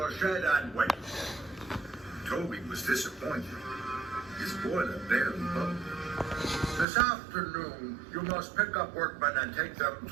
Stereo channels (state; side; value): drops out; left; at 6.9 s